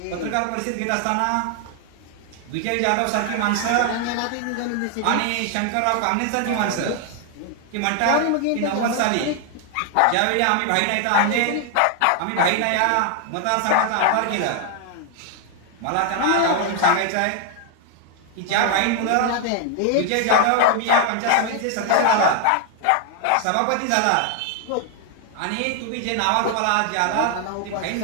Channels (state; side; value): different; both; correlation 0.00